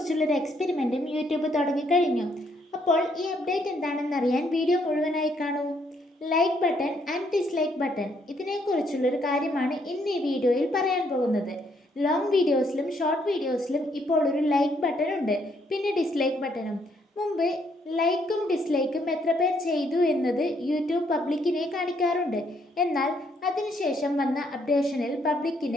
എക്സ്പെരിമെൻറ്റും യൂട്യൂബ് തുടങ്ങിക്കഴിഞ്ഞു. അപ്പോൾ ഈ അപ്ഡേറ്റ് എന്താണെന്നറിയാൻ വീഡിയോ മുഴുവനായി കാണൂ. Like button and dislike button, ഇതിനെക്കുറിച്ചുള്ളൊരു കാര്യമാണ് ഇന്ന് ഈ വീഡിയോയിൽ പറയാൻ പോകുന്നത്. ലോങ് വീഡിയോസിലും ഷോർട്ട് വീഡിയോസിലും ഇപ്പോൾ ഒരു ലൈക്ക് ബട്ടൺ ഉണ്ട്, പിന്നെ ഡിസ്ലൈക്ക് ബട്ടണും. മുമ്പ് ലൈക്കും ഡിസ്ലൈക്കും എത്ര പേർ ചെയ്തു എന്നത് യൂട്യൂബ് പബ്ലിക്കിനെ കാണിക്കാറുണ്ട്. എന്നാൽ അതിനുശേഷം വന്ന അപ്ഡേഷനിൽ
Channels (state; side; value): normal; both; correlation 0.71